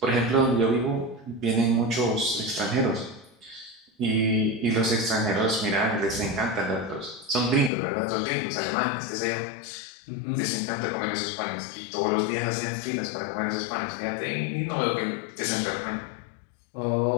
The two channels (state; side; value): drops out; right; at 7.7 s